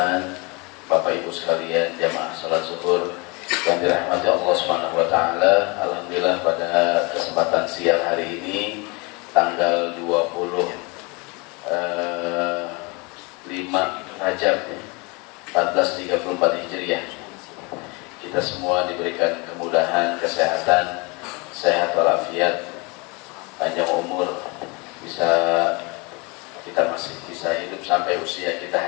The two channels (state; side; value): quieter; right; 28.4 dB